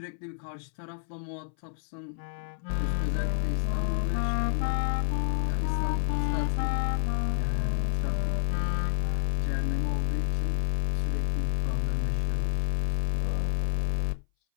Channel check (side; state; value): right; silent; 59 dB below the other